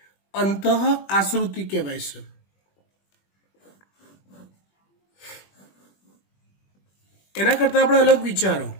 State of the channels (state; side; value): late; right; 21 ms